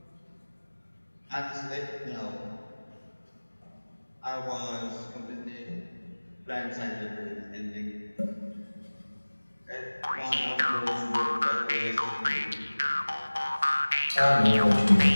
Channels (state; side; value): inverted; both; correlation -1.00